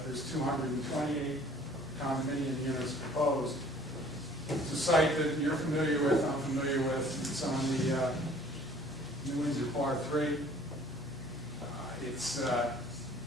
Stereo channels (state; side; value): normal; both; correlation 0.53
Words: there's 228 condominium units proposed. It's a site that you're familiar with, I'm familiar with. It's on the New Windsor Part 3.